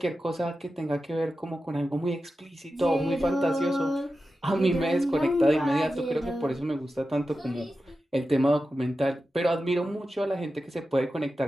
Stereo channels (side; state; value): both; normal; correlation 0.92